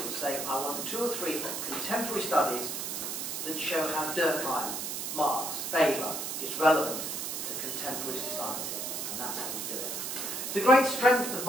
say, I want 2 or 3 contemporary studies that show how Durkheim, Marx, Weber is relevant to contemporary society, and that's how you do it. The great strength of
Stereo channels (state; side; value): noise; right; hiss, 4 dB below the sound